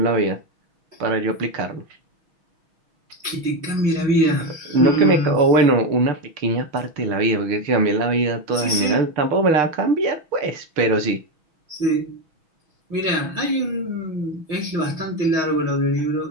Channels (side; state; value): left; late; 6.2 ms